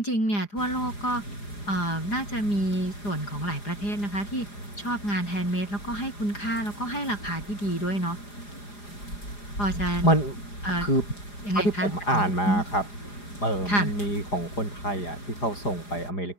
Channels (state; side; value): late; right; 4.9 ms